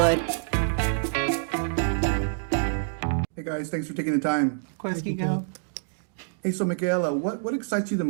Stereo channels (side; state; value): left; silent; digital silence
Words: Hey guys, thanks for taking the time. Of course, Kiko. Hey, so Michaela, what excites you the